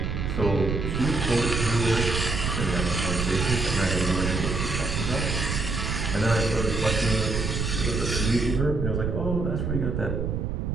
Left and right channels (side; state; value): right; noise; rumble, 1 dB below the sound